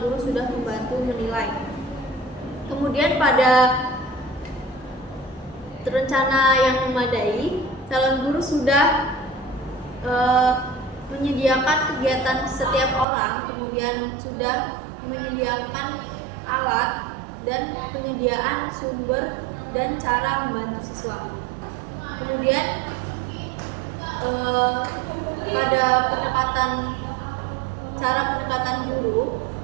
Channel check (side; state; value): left; drops out; at 13.1 s